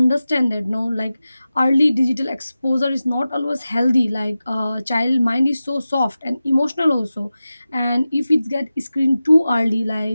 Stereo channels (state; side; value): inverted; both; correlation -0.94